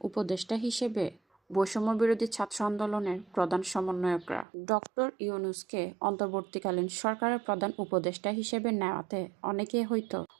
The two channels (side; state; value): left; drops out; at 4.5 s